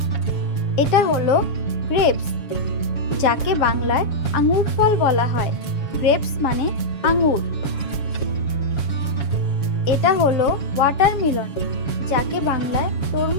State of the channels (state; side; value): late; right; 7.2 ms